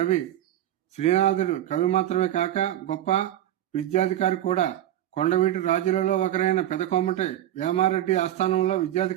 శ్రీనాథుడు కవి మాత్రమే కాక గొప్ప విద్యాధికారి కూడా. కొండవీటి రాజులలో ఒకరైన పెదకోమటి వేమారెడ్డి ఆస్థానంలో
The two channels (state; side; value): quieter; left; 12.5 dB